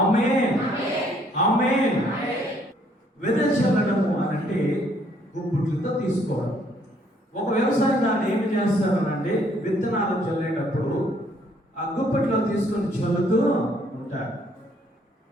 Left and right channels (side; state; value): both; normal; correlation 0.65